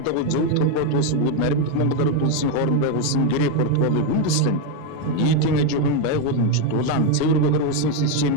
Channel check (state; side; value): different; both; correlation 0.02